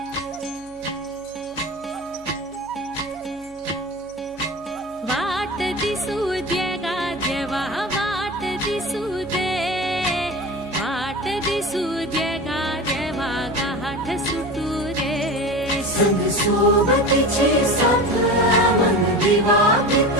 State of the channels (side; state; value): right; noise; hum, 25 dB below the sound